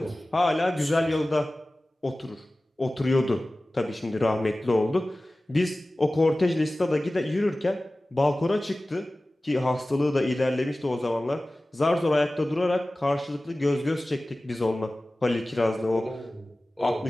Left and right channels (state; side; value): normal; both; correlation 0.97